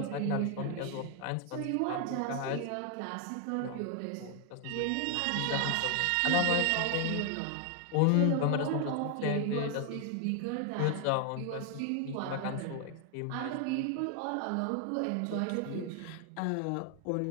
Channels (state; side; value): different; both; correlation 0.00